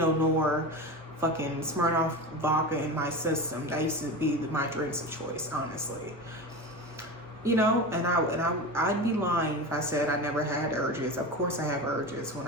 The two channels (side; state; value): both; normal; correlation 0.26